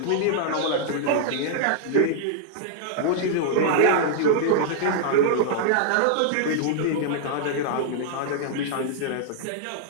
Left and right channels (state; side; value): different; both; correlation -0.01